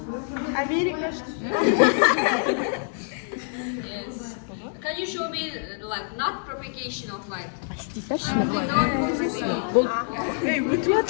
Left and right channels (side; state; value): right; silent; 61 dB below the other